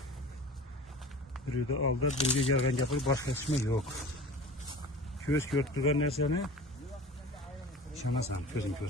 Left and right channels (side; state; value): both; normal; correlation 0.38